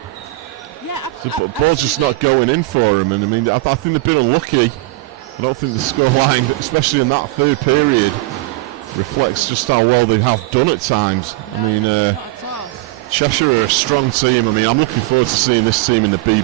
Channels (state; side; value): quieter; left; 19.8 dB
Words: absolutely. The ball's just not going in for him, and I mean, I think they've been unlucky. I don't think the scoreline, especially in that third period, reflects just how well they have done at times. No, not at all. Cheshire are a strong team. I mean, I'm looking forward to seeing this team in the